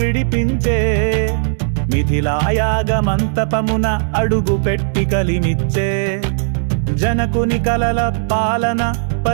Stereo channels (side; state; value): left; silent; digital silence